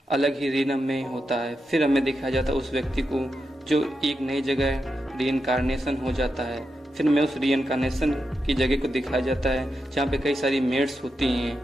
अलग ही रीनम में होता है। फिर हमें दिखाया जाता है उस व्यक्ति को जो एक नई जगह रीइंकारनेशन हो जाता है। फिर हमें उस रीइंकारनेशन की जगह को दिखाया जाता है जहाँ पे कई सारी मेड्स होती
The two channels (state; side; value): normal; both; correlation 0.87